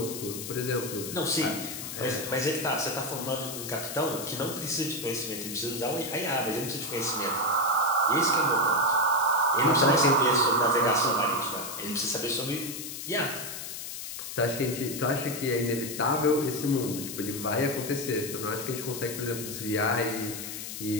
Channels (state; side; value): noise; left; hiss, 7 dB below the sound